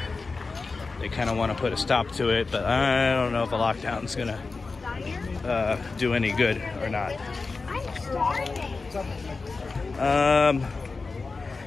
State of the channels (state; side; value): quieter; right; 4.1 dB